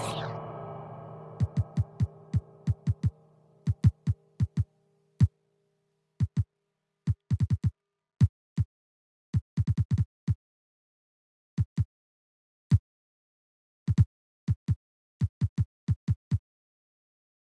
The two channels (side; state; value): both; identical; correlation 1.00